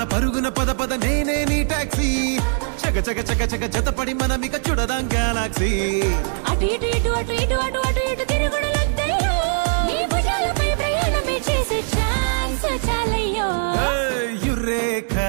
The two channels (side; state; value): left; silent; digital silence